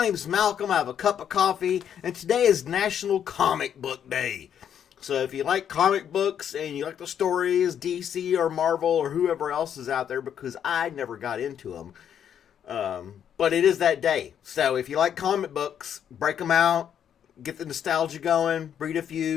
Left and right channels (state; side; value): quieter; right; 9.0 dB